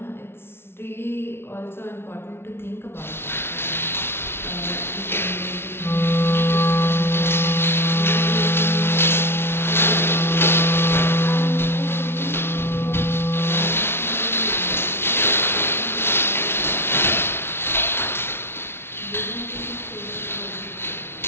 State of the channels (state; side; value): late; right; 0.12 ms